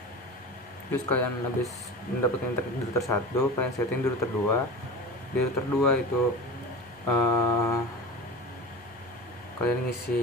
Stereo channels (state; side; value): normal; both; correlation 0.32